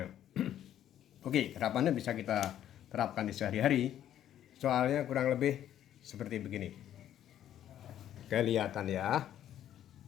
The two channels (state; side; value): quieter; right; 11.2 dB